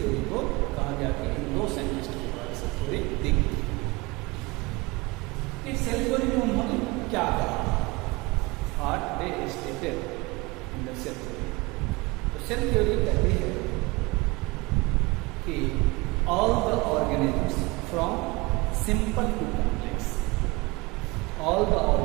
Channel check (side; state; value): left; quieter; 24.3 dB